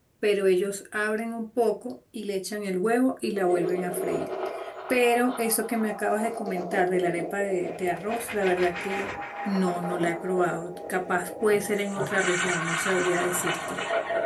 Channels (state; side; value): identical; both; correlation 1.00